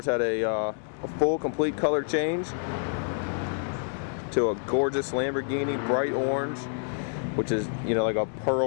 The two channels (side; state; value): right; silent; 59 dB below the other